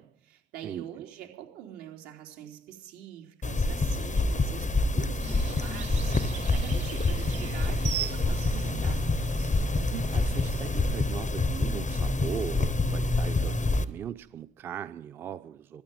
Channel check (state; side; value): normal; both; correlation 0.77